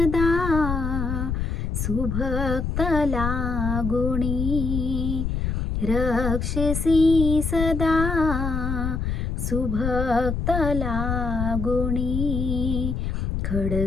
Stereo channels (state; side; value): noise; left; rumble, 2 dB below the sound